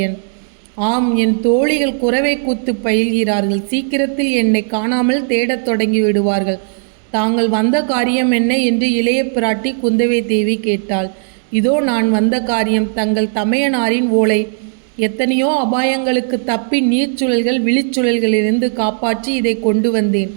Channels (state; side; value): silent; left; digital silence